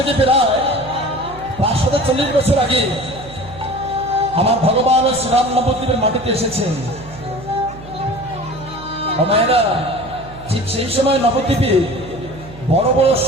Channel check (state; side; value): noise; right; hum, 17 dB below the sound